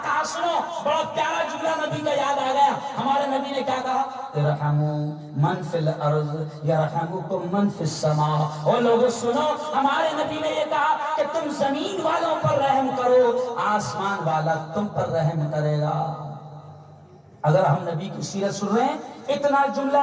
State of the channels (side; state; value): both; identical; correlation 1.00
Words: کہا سنو، بڑا پیارا جملہ نبی کا یاد آ گیا۔ ہمارے نبی نے کیا کہا؟ ارحموا من فی الارض یرحمکم من فی السماء۔ اور لوگوں سنو، ہمارے نبی نے یہ کہا کہ تم زمین والوں پر رحم کرو، آسمان والا تم پر رحم کرے گا۔ اگر ہم نبی کی سیرت سن رہے ہیں، اتنا جملہ